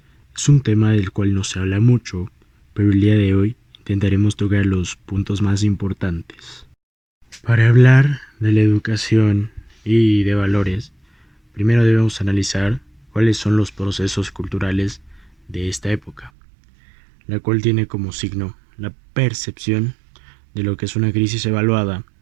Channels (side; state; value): left; drops out; at 16.3 s